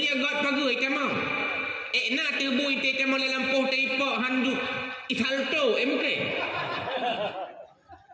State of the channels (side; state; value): both; identical; correlation 1.00